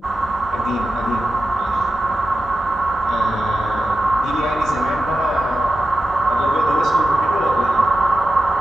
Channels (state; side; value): normal; both; correlation 0.92